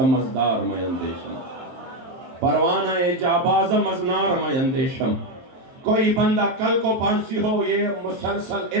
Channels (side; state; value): left; late; 23 ms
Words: مزدار میں اندیشم، پروانہ جاباز مزنار میں اندیشم۔ کوئی بندہ کل کو پانسی ہو، یہ مسلسل